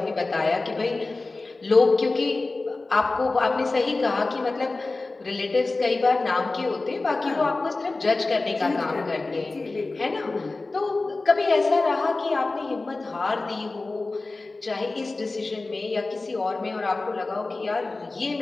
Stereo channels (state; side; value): quieter; right; 3.4 dB